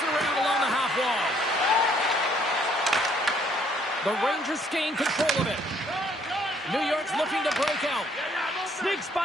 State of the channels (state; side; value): normal; both; correlation 0.65